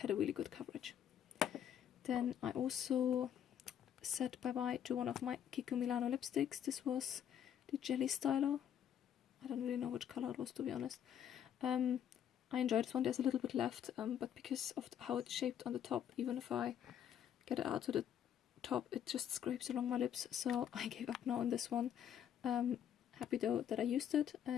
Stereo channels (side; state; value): right; quieter; 9.6 dB